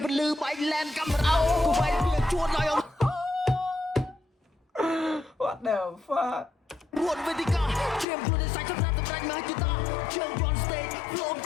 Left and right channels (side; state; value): right; drops out; at 8.1 s